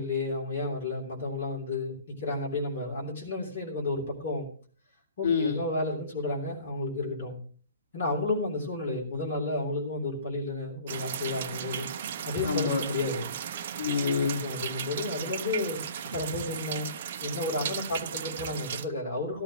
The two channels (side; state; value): both; inverted; correlation -0.45